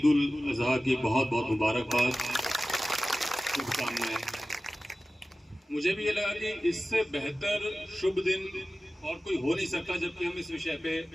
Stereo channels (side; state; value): both; normal; correlation 0.95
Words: उल अजहा की बहुत बहुत मुबारकबाद, शुभकामनाएं। मुझे भी ये लगा कि इससे बेहतर शुभ दिन और कोई हो नहीं सकता जबकि हम इस विषय पे